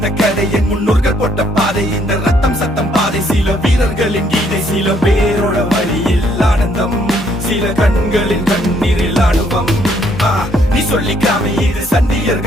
கதை என் முன்னோர்கள் போட்ட பாதை. இந்த ரத்தம் சத்தம் பாதை, சில வீரர்களின் கீதை. சில பேரோட வழியில் ஆனந்தம், சில கண்களின் கண்ணீரில் ஆணுவம். நீ சொல்லிக்காம இது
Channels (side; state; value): both; normal; correlation 0.68